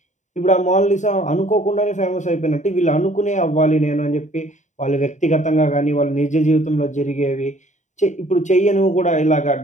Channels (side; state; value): right; late; 0.35 ms